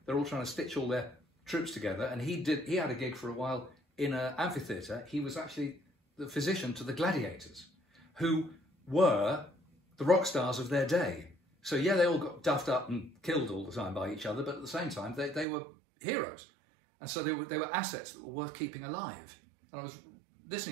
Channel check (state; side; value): drops out; left; at 15.5 s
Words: they're all trying to stitch all their troops together. And he had a gig for a while in an amphitheatre. He was actually the physician to the gladiators, who were the rock stars of their day. So yeah, they all got duffed up and killed all the time by each other, but at the same time, they were heroes. And so they were assets that were worth keeping alive. And I was